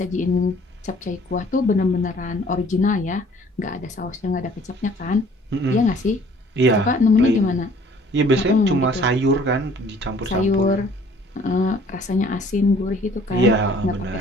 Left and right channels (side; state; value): both; normal; correlation 0.55